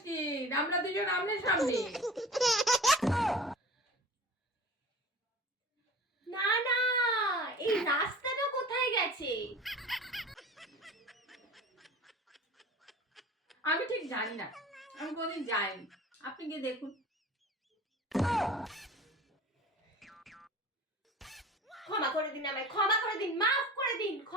আমরা দুজন আমনের সামনে। না না, এই রাস্তাটা কোথায় গেছে? আমি ঠিক জানি না, আমি কোনদিন যাইনি, আপনি গিয়ে দেখুন। ক্ষমা করে দিন আমায়, ক্ষমা করে দিন, মাফ করে দিন,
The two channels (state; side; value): normal; both; correlation 0.39